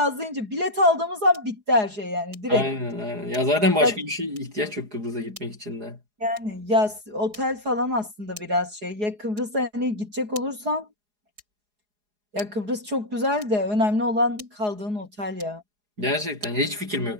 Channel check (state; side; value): late; left; 4.8 ms